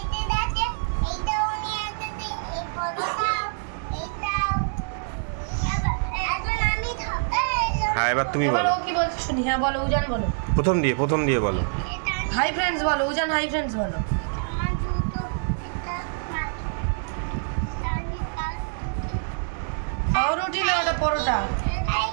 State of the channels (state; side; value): silent; left; digital silence